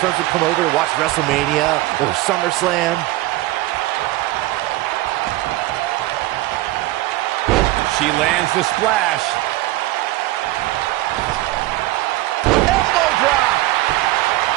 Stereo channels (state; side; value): quieter; left; 18.0 dB